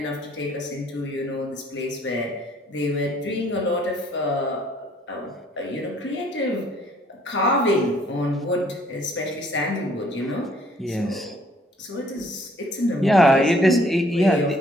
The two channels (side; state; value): both; normal; correlation 0.61